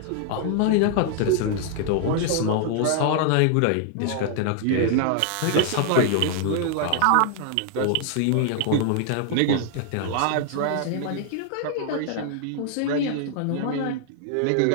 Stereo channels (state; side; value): different; both; correlation 0.00